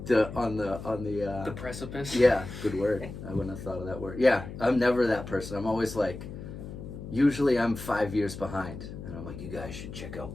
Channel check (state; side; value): noise; left; hum, 10 dB below the sound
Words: on the precipice. Yeah, good word. I wouldn't have thought of that word. Yeah, I'm never that person. I'm always like, usually I'm 5 years behind. And I'm like, you guys should check out